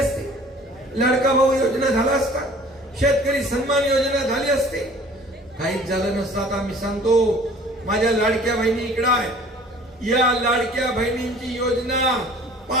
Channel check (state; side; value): normal; both; correlation 0.49